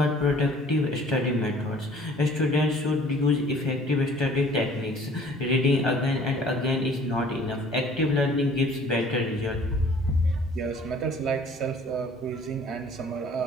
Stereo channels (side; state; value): both; normal; correlation 0.53